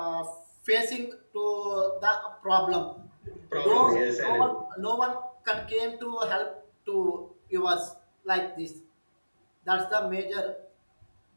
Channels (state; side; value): inverted; both; correlation -1.00